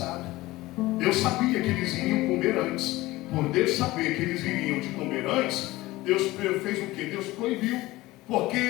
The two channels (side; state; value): right; quieter; 18.7 dB